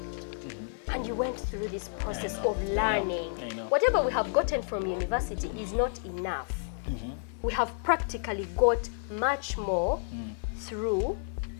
And you went through this process of learning. Whatever we have gotten from university is not enough. We have practically got much more through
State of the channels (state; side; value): silent; right; 57 dB below the other